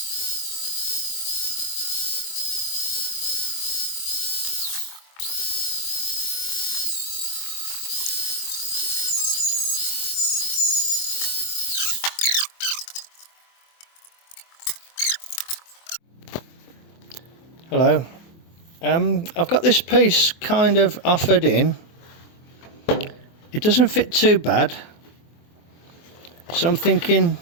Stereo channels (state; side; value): late; right; 24 ms